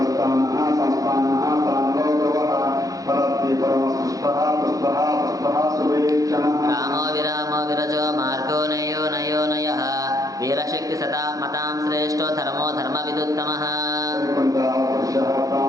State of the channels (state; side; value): late; left; 0.17 ms